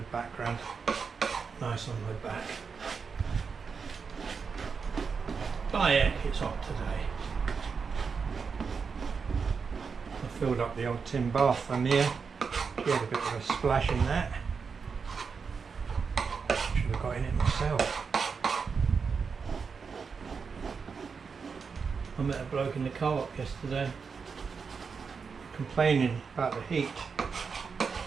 background, nice on my back. By heck, it's hot today. I filled up the old tin bath from here. She had a bit of a splash in that. Should have got in it myself. I met a bloke in the co-op yesterday complaining about the heat.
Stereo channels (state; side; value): quieter; left; 5.5 dB